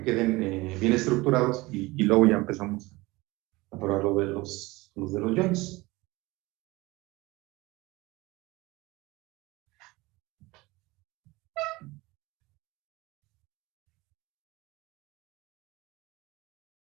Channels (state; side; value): quieter; left; 21.7 dB